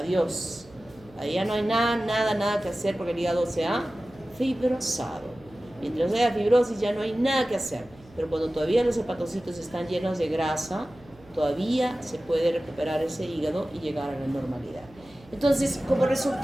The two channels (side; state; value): right; noise; hum, 25 dB below the sound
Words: Ahí ya no hay nada que hacer porque el hígado se ha fibrosado. Mientras haya fibrosis ya no hay nada que hacer. Pero cuando todavía los hepatocitos están llenos de grasa, todavía se puede recuperar ese hígado y llegar a la normalidad. Entonces, como